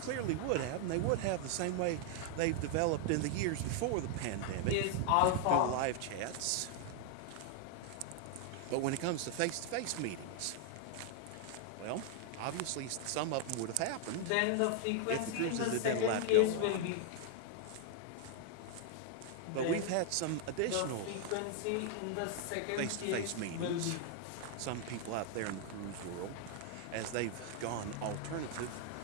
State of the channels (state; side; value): different; both; correlation 0.00